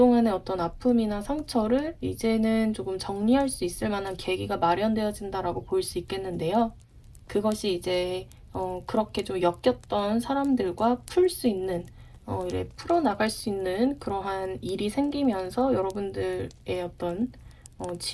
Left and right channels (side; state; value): both; identical; correlation 1.00